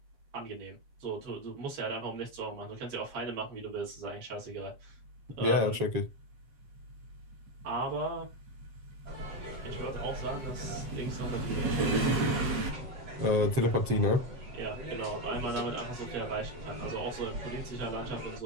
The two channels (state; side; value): late; left; 7.6 ms